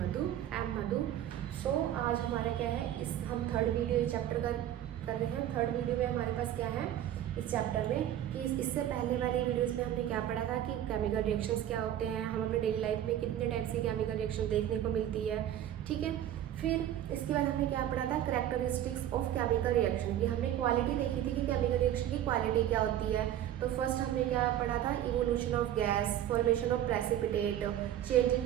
आई एम मधु। सो आज हमारा क्या है, इस हम थर्ड वीडियो चैप्टर का कर रहे हैं। थर्ड वीडियो में हमारे पास क्या है इस चैप्टर में कि इससे पहले वाले वीडियोस में हमने क्या पढ़ा था कि केमिकल रिएक्शंस क्या होते हैं, हम अपने डेली लाइफ में कितने टाइप से केमिकल रिएक्शन देखने को मिलती है। ठीक है, फिर इसके बाद हमने क्या पढ़ा था, कैरेक्टरिस्टिक्स ऑफ केमिकल रिएक्शन की हमने क्वालिटी देखी थी कि केमिकल रिएक्शन की क्वालिटी क्या होती है। तो फर्स्ट हमने क्या पढ़ा था, evolution of gas, formation of precipitate, change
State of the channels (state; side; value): quieter; left; 11.5 dB